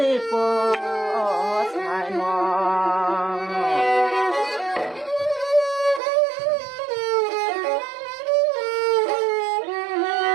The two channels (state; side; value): drops out; left; at 6.0 s